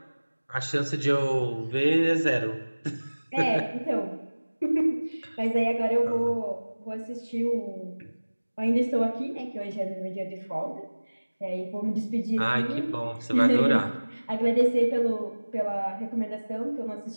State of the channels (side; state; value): both; inverted; correlation -1.00